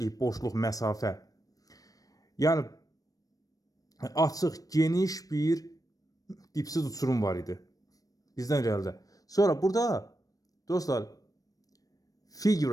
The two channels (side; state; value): right; late; 0.18 ms